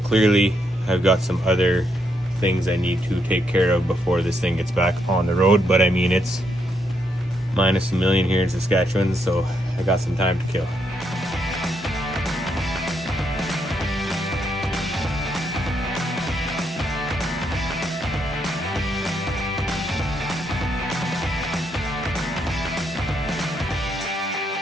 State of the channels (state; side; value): normal; both; correlation 0.77